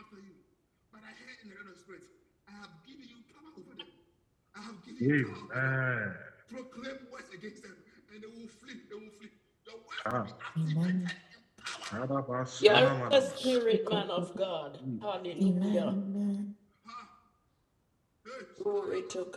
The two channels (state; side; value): identical; both; correlation 1.00